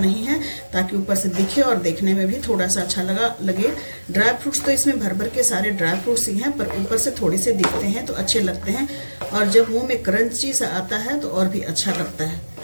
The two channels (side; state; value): both; inverted; correlation -1.00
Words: है ताकि ऊपर से दिखे और देखने में भी थोड़ा सा अच्छा लगे। ड्राई फ्रूट्स तो इसमें भर भर के सारे ड्राई फ्रूट्स ही हैं, पर ऊपर से थोड़े से दिखते हैं तो अच्छे लगते हैं। और जब मुंह में क्रंची सा आता है तो और भी अच्छा लगता है।